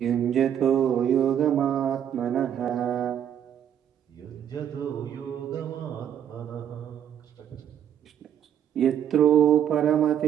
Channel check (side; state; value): left; quieter; 9.6 dB